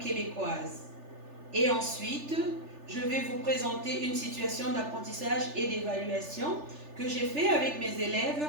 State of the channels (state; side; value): late; left; 3.4 ms